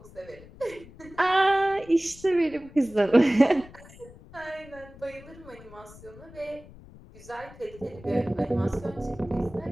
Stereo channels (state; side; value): noise; left; rumble, 20 dB below the sound